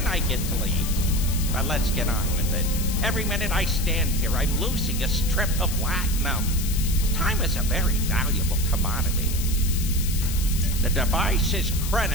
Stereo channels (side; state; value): left; noise; hiss, 7 dB below the sound